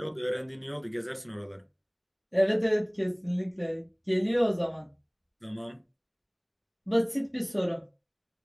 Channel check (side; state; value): both; identical; correlation 1.00